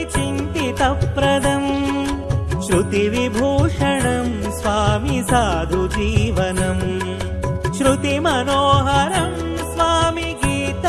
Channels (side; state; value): both; identical; correlation 1.00